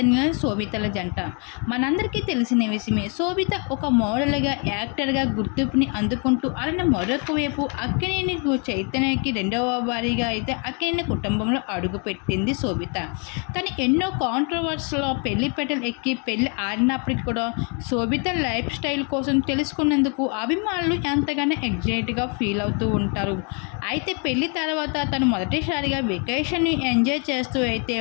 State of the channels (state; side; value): quieter; right; 37.1 dB